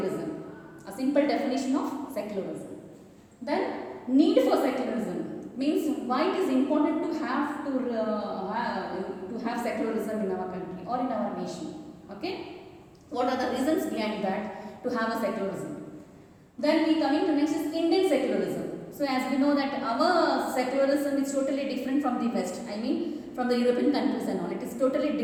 A simple definition of secularism. Then need for secularism. Means why it is important to have secularism in our country or in our nation. Okay, what are the reasons behind that to have a secularism? Then we coming to next is Indian secularism. So as we know that our secularism is totally different from the West. I mean from the European countries and all. It is totally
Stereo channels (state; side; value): identical; both; correlation 1.00